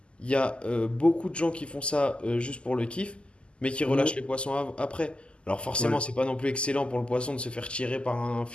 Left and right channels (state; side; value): late; right; 0.052 ms